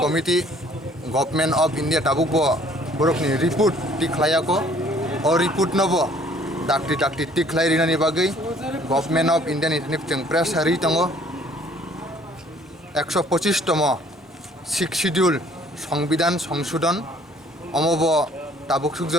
committee government of India ताबुकबो बरकनि रिपोर्ट टिख्लायाको अ रिपोर्ट नबो डाक्टी टिख्लायरिनानि बागै गभर्नमेन्ट अफ इन्डियानि जों प्रेस हारि दङ 125तम सिक्स शिड्यूल संविधान संशोधन अमब ताबुक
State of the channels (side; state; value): both; normal; correlation 0.58